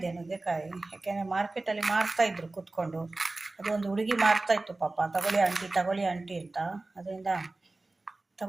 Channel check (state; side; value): quieter; left; 3.1 dB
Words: ನುಗ್ಗೆಕಾಯಿ. ಯಾಕೆಂದರೆ ಮಾರ್ಕೆಟಲ್ಲಿ ಮಾರ್ತಾಯಿದ್ರು ಕೂತ್ಕೊಂಡು. ಅದು ಒಂದು ಹುಡುಗಿ ಮಾರ್ತಾಯಿತ್ತು ಪಾಪ, ತಗೊಳ್ಳಿ ಆಂಟಿ ಅಂತ. ಅದರಿಂದ